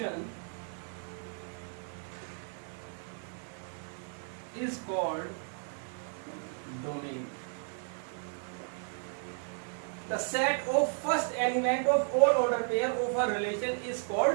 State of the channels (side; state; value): left; silent; 55 dB below the other